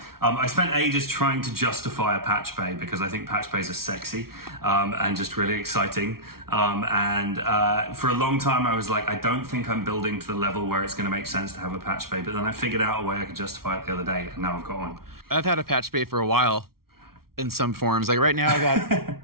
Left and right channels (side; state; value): left; late; 0.94 ms